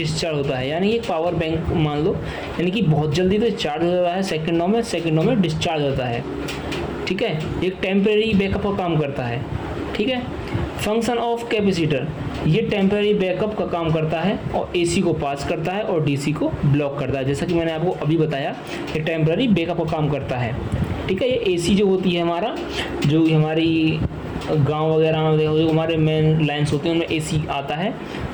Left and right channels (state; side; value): identical; both; correlation 1.00